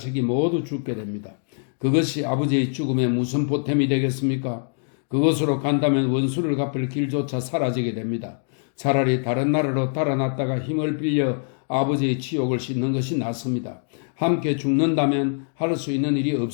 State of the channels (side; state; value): right; silent; 63 dB below the other